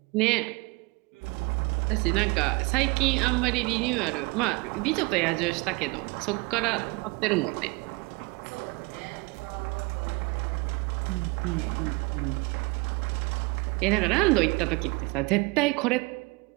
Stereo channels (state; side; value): quieter; left; 26.7 dB